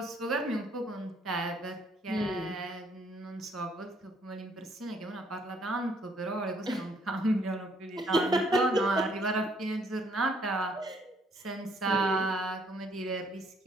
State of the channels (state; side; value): normal; both; correlation 0.66